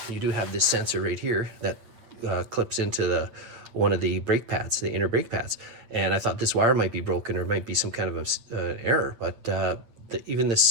you do have this sensor right here that clips into one of the brake pads, the inner brake pads. And I thought this wire might be broken or might be some kind of an error, but even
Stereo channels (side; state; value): left; late; 8.5 ms